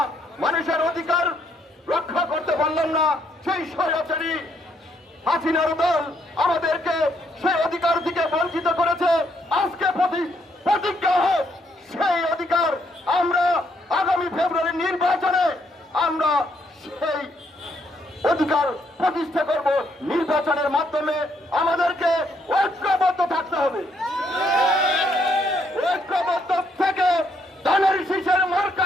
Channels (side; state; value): both; normal; correlation 0.72